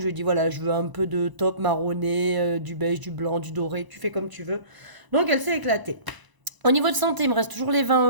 lui ai dit, voilà, je veux un peu de taupe marronné, du beige, du blanc, du doré, tu fais comme tu veux. Donc, elle s'est éclatée. Au niveau de santé, il me reste toujours les 20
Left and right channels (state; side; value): late; left; 1.0 ms